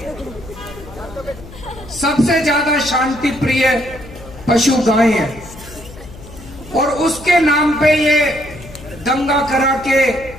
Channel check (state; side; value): noise; left; hum, 17 dB below the sound